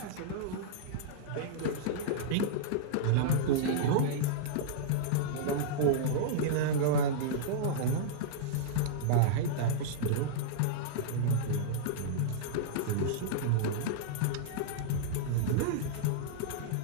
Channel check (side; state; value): both; different; correlation -0.03